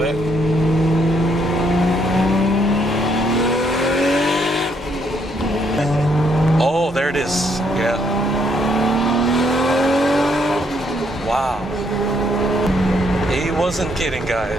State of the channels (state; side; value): normal; both; correlation 0.71